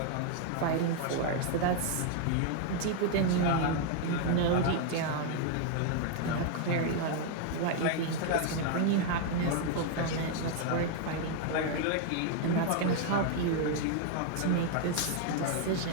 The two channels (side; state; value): both; different; correlation 0.00